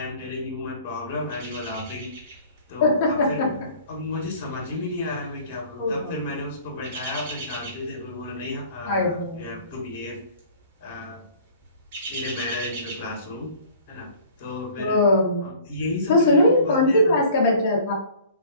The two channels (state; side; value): inverted; both; correlation -0.48